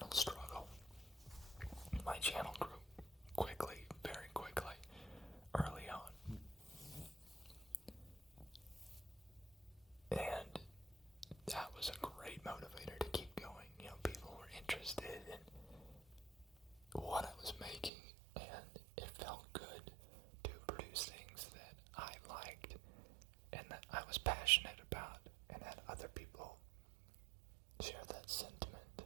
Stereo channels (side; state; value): left; drops out; at 17.9 s